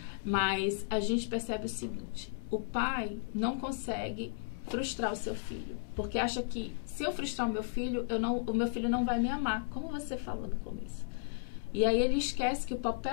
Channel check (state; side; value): silent; right; digital silence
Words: Mas a gente percebe o seguinte, o pai não consegue frustrar o seu filho, porque acha que se eu frustrar o meu filho não vai me amar, como você falou no começo. E aí ele esquece que o